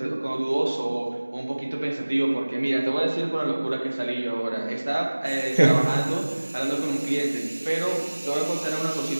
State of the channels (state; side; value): inverted; both; correlation -1.00